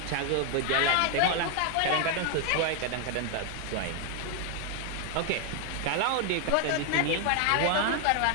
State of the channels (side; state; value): both; different; correlation 0.00